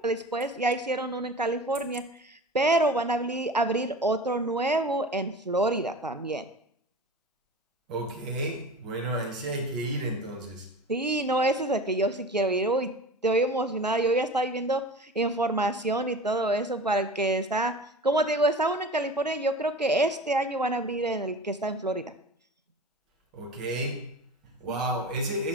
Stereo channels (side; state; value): both; normal; correlation 0.36